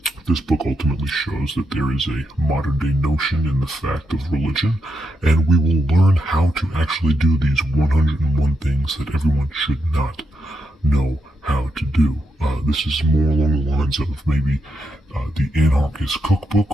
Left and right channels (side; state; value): both; normal; correlation 0.82